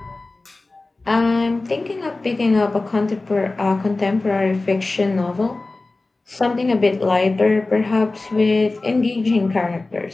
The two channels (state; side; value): quieter; right; 3.3 dB